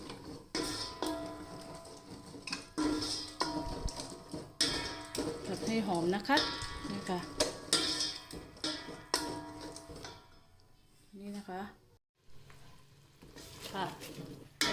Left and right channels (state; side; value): identical; both; correlation 1.00